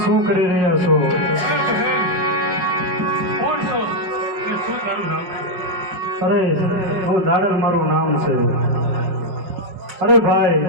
શું કરી રહ્યા છો? કોણ છો અને શું તારું નામ છે? અરે હું દાડલ મારું નામ છે. અરે ભાઈ,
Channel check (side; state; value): left; late; 5.2 ms